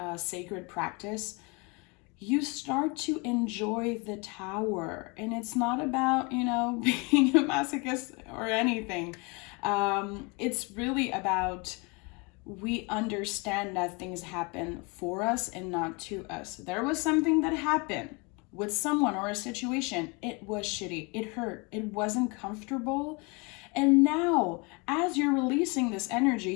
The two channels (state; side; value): quieter; right; 29.6 dB